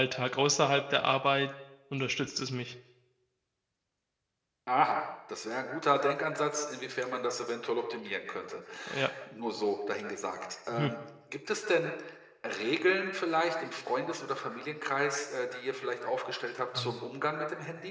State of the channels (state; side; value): identical; both; correlation 1.00